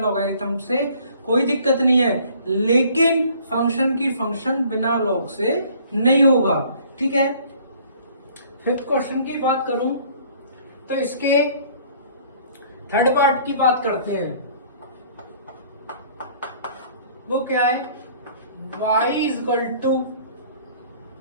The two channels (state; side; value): inverted; both; correlation -0.55